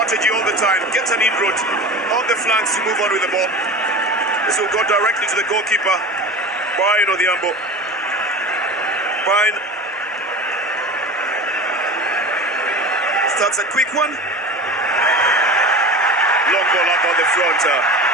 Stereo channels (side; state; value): both; normal; correlation 0.32